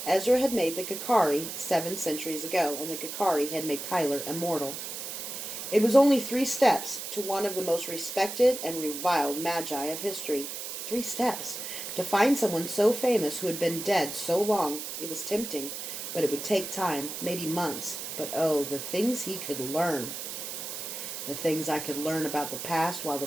Ezra had made the Kakari 7 centuries ago, and the Kakari had made Kyler immortal. It was only 3 steps to one of the most respected and reviled magi of history. 3 steps. To find someone so famous who had been dead so long. It was tempting, but it would take time, maybe months. But oh, the things he could learn. The things I could learn about the past while the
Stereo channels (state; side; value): noise; right; hiss, 7 dB below the sound